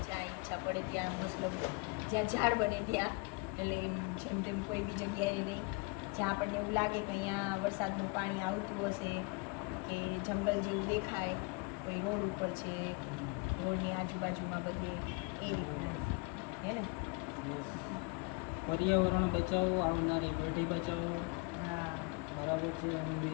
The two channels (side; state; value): right; quieter; 28.9 dB